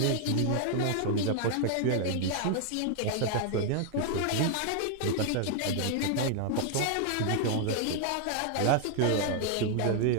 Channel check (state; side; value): different; both; correlation 0.00